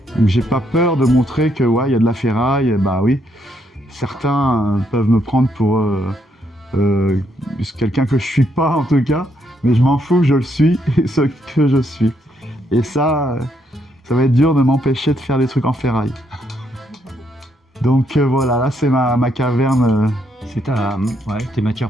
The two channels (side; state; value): both; normal; correlation 0.75